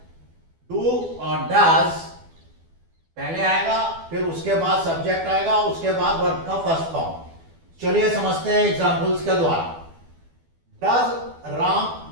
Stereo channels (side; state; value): left; late; 12 ms